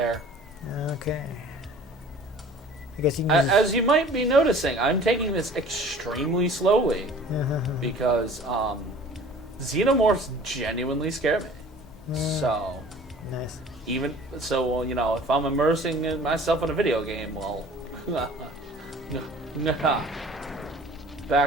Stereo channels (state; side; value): normal; both; correlation 0.47